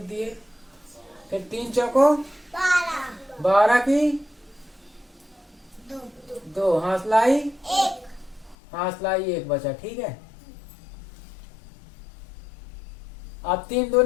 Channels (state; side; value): drops out; right; at 8.6 s